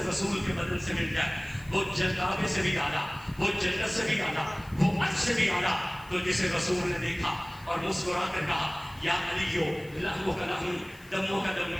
رسول کے بدن سے مل جائے, وہ جنابے سے بھی آلہ, وہ جنت سے بھی آلہ, وہ عرش سے بھی آلہ. تو جسے رسول نے دیکھا اور مسکرا کر کہا, یا علیو لحمو کا لحمی, دمو کا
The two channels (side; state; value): left; noise; hiss, 24 dB below the sound